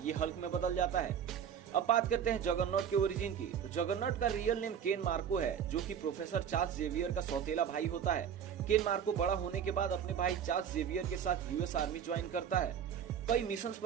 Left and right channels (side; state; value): left; quieter; 8.4 dB